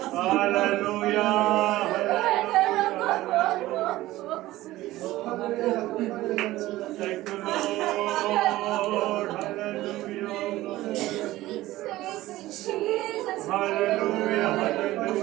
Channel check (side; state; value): left; quieter; 16.7 dB